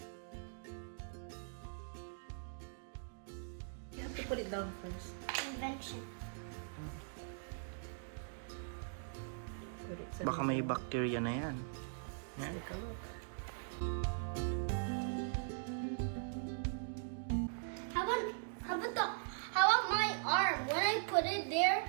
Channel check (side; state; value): left; silent; digital silence